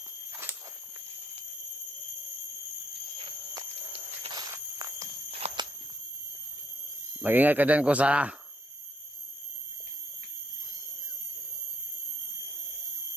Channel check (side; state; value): both; normal; correlation 0.72